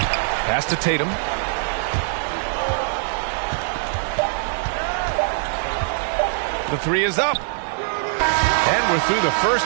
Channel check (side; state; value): left; silent; 64 dB below the other